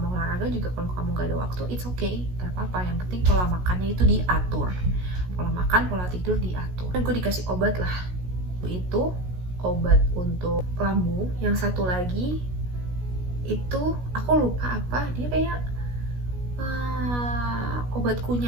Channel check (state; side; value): late; left; 16 ms